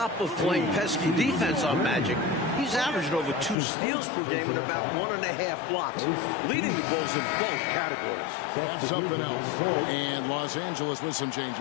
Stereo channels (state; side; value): drops out; right; at 3.6 s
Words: of playing pesky defense on Magic, he's averaging over 2 steals per game and about 1.5 blocks, leading the Bulls in both categories. That's something else. And Los Angeles with some